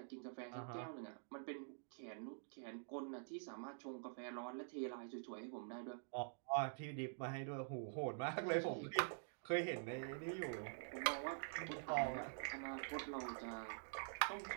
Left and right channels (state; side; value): silent; left; digital silence